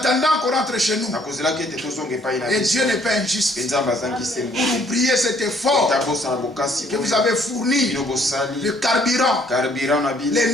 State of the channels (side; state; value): both; normal; correlation 0.64